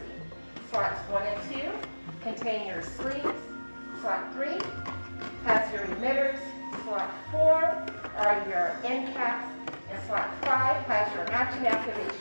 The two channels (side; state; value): both; inverted; correlation -1.00